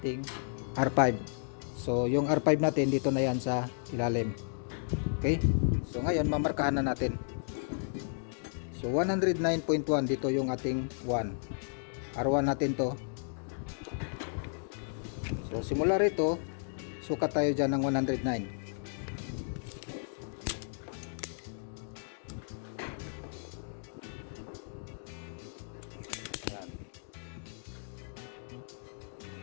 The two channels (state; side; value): silent; right; digital silence